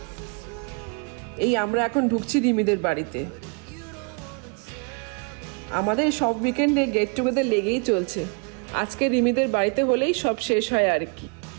এই আমরা এখন ঢুকছি রিমিদের বাড়িতে। আমাদের সব উইকেন্ডে গেট টুগেদার লেগেই চলছে। আজকে রিমিদের বাড়িতে হলেই সব শেষ হয় আর কি।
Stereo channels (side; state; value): left; quieter; 36.6 dB